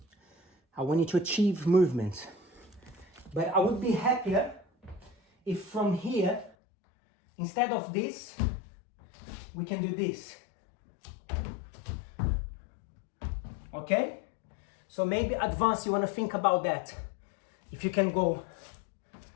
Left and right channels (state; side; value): drops out; right; at 6.6 s